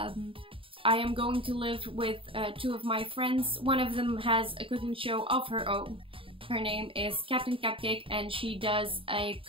am going to live with 2 of my friends. One of them has a cooking show of her own. Her name is Captain Cupcake and she does a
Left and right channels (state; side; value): late; left; 0.26 ms